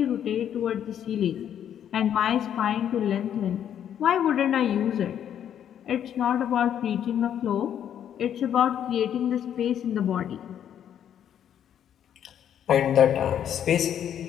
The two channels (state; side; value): quieter; right; 9.6 dB